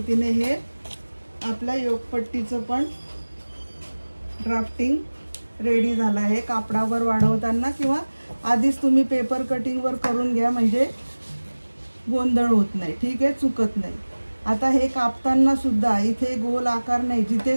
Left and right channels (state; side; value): inverted; both; correlation -1.00